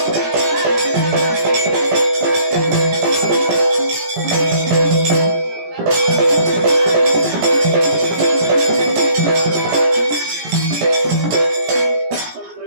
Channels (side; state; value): left; late; 17 ms